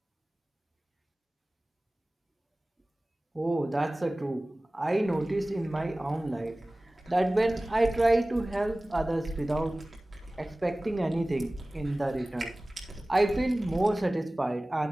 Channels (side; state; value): both; normal; correlation 0.98